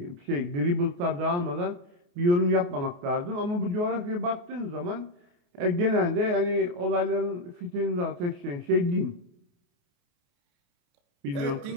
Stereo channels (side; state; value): left; late; 28 ms